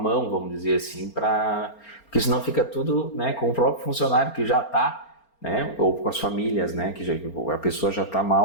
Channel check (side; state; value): right; late; 4.4 ms